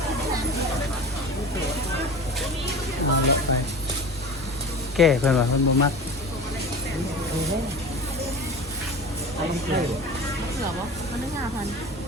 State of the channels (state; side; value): normal; both; correlation 0.35